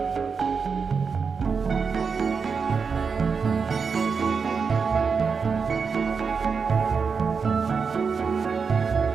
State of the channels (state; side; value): quieter; left; 5.5 dB